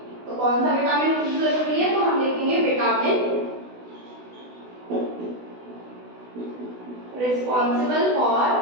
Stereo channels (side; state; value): left; late; 16 ms